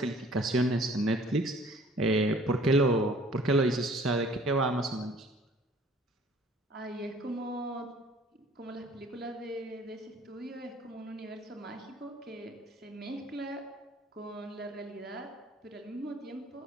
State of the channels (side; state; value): both; normal; correlation 0.54